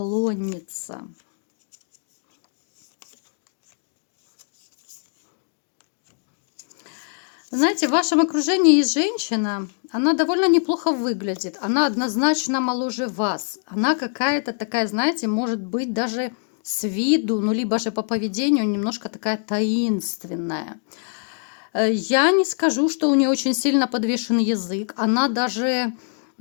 Знаете, в вашем окружении есть женщина, она довольно неплохо выглядит, она однозначно моложе вас. Она какая-то такая, знаете, может быть даже с виду, ну либо же по поведению немножко такая таинственная. Я не скажу, что у нее очень сильно подвешен язык, она даже,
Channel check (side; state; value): right; silent; 63 dB below the other